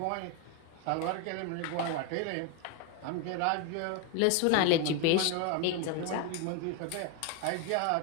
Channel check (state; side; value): different; both; correlation 0.01